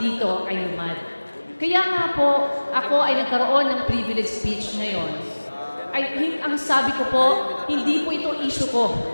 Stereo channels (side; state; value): both; inverted; correlation -1.00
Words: ay lumad. Kaya nga po, ako ay nagkaroon ng privilege speech ngayon. Ang sabi ko po, hindi po ito issue ko.